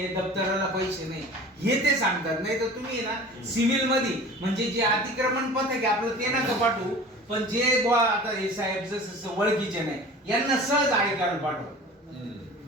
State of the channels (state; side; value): normal; both; correlation 0.40